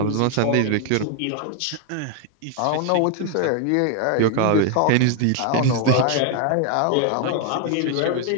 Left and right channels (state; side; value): different; both; correlation 0.00